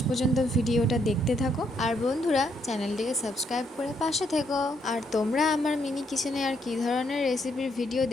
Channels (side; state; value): both; normal; correlation 0.74